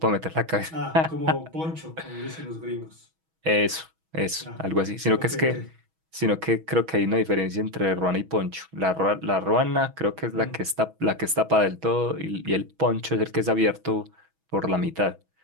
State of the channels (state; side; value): late; left; 6.2 ms